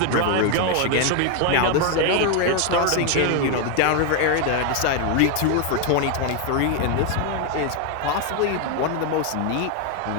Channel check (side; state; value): both; different; correlation 0.01